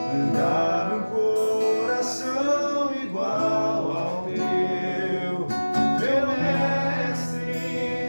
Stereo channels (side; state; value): both; inverted; correlation -1.00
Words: dá-me um coração igual ao teu, meu